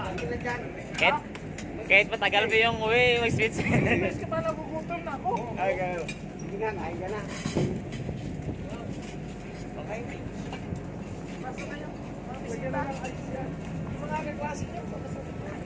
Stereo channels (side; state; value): both; identical; correlation 1.00